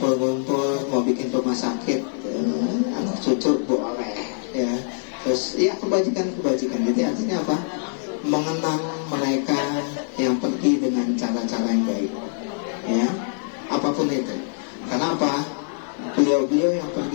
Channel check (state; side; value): silent; right; digital silence